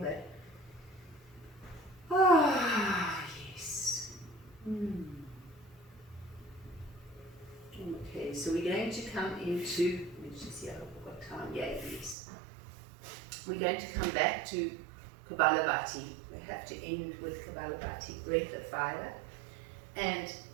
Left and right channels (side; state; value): left; drops out; at 12.2 s